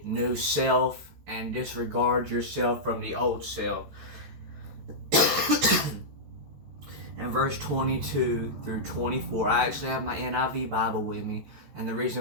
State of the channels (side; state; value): left; late; 14 ms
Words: new self and disregard yourself from the old self. And verse 22 through 24, I actually have my NIV Bible with me, and the